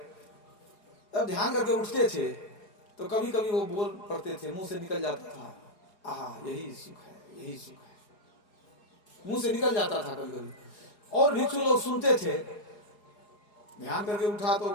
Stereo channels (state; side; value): late; right; 4.8 ms